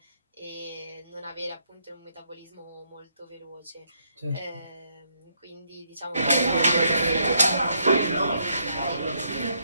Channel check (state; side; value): inverted; both; correlation -0.74